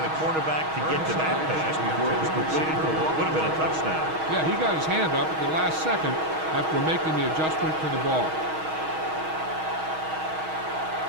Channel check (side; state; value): left; late; 6.3 ms